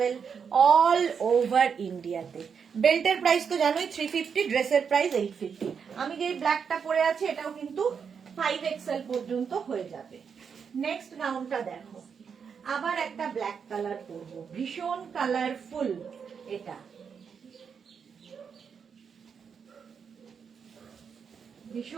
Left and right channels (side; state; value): left; quieter; 6.5 dB